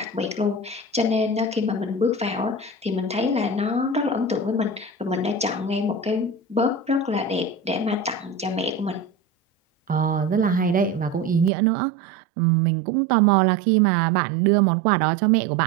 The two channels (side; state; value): left; drops out; at 11.5 s